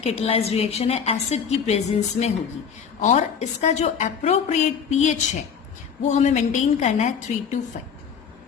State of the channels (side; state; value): right; quieter; 6.9 dB